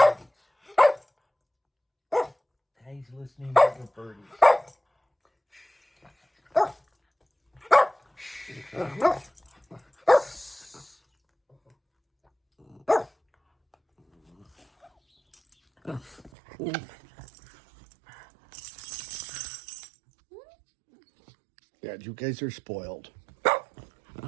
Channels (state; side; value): drops out; left; at 16.3 s